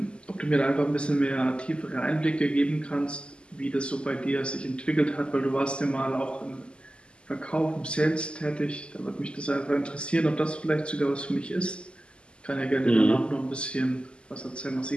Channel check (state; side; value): late; right; 0.052 ms